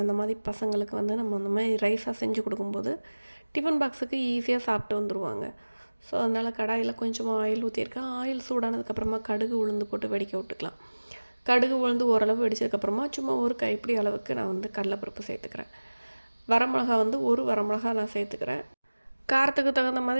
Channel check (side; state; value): both; inverted; correlation -1.00